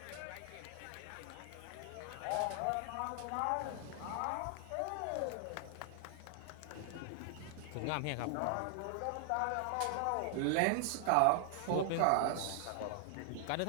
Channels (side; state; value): both; different; correlation 0.00